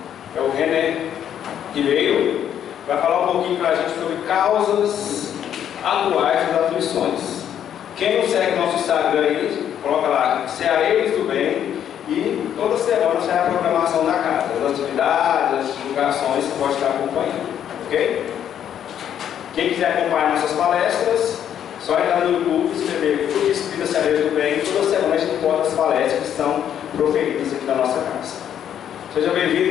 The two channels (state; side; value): quieter; right; 9.7 dB